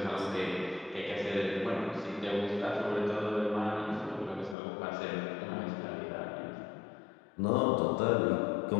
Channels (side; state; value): right; drops out; at 4.5 s